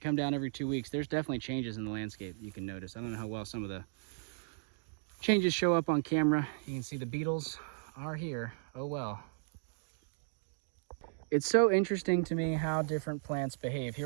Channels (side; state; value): left; silent; digital silence